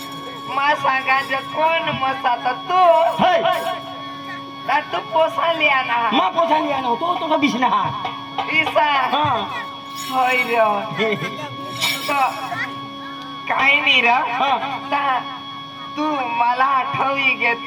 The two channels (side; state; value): both; identical; correlation 1.00